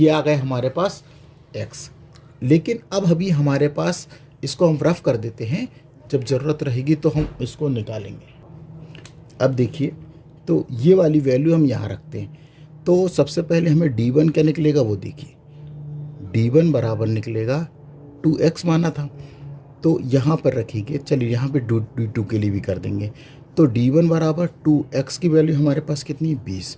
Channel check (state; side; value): identical; both; correlation 1.00